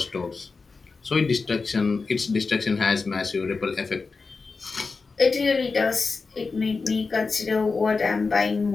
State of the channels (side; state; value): right; quieter; 4.4 dB